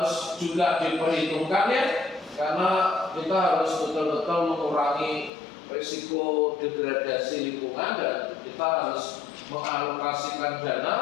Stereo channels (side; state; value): right; drops out; at 5.3 s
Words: juga diperhitungkan, ya, karena kita harus betul-betul mengurangi risiko degradasi lingkungan, dan kita harus mengalokasikan